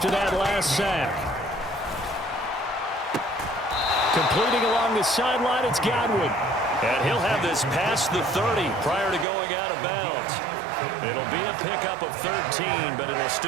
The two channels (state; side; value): drops out; left; at 9.2 s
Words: that last sack. Completing along the sideline, it's Godwin. And he'll have this past the 30 prior to going out of bounds. It'll be a pickup of 13, but it'll